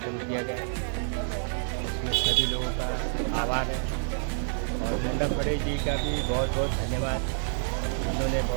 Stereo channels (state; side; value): silent; left; digital silence